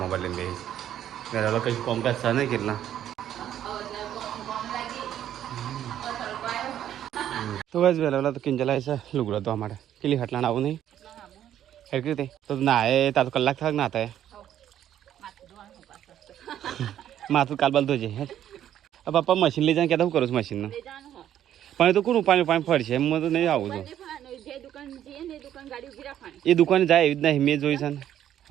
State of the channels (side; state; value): left; quieter; 11.0 dB